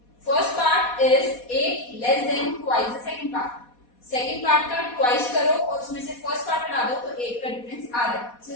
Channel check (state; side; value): late; right; 4.2 ms